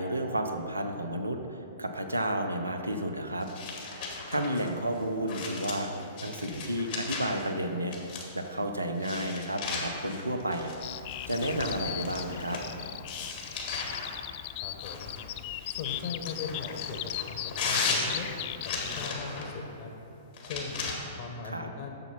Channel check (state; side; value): inverted; both; correlation -0.48